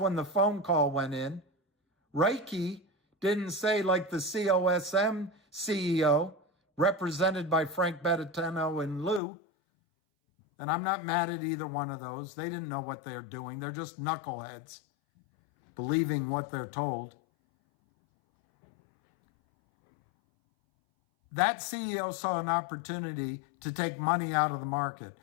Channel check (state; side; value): drops out; right; at 9.2 s